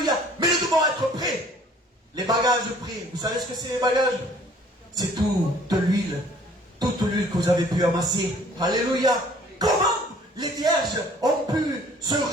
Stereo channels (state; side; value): normal; both; correlation 0.55